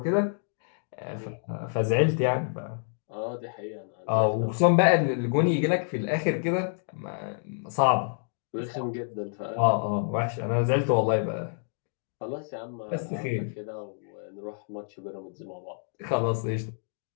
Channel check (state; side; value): silent; right; digital silence